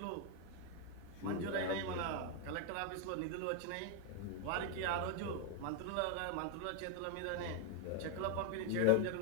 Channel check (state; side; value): different; both; correlation 0.01